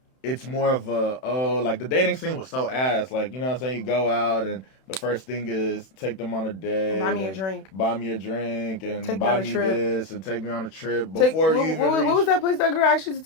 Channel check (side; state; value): right; late; 32 ms